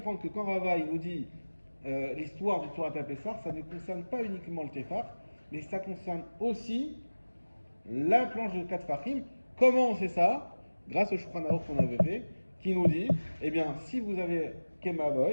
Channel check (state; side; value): inverted; both; correlation -1.00